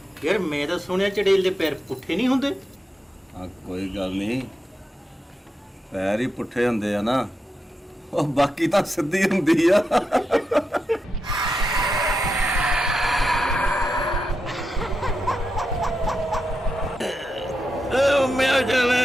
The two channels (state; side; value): normal; both; correlation 0.87